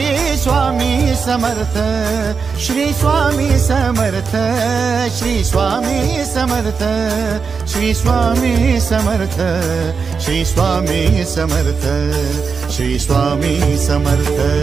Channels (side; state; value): left; quieter; 5.4 dB